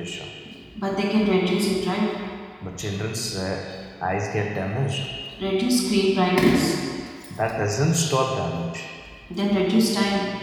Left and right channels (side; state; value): both; identical; correlation 1.00